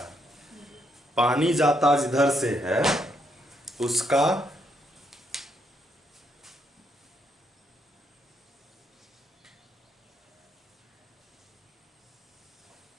पानी जाता जिधर से है उसका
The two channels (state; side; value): normal; both; correlation 0.75